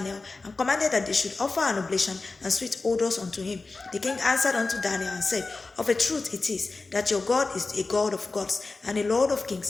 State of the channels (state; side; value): quieter; right; 3.7 dB